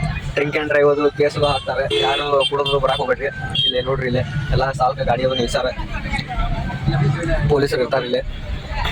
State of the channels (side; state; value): both; identical; correlation 1.00